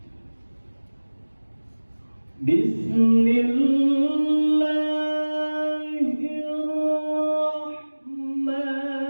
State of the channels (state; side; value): inverted; both; correlation -1.00